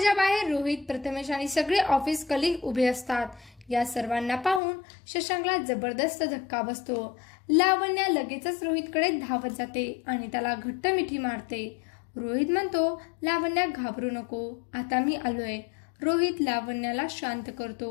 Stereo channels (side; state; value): right; drops out; at 4.6 s